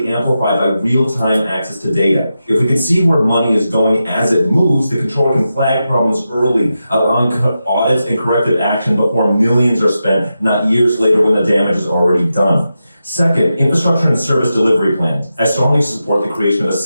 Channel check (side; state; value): both; inverted; correlation -0.89